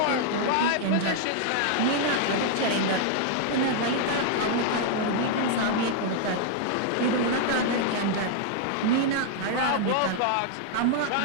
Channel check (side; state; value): both; different; correlation 0.00